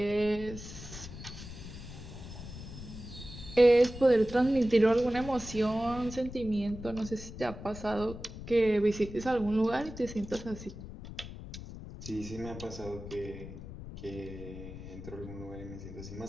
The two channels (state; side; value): noise; left; rumble, 12 dB below the sound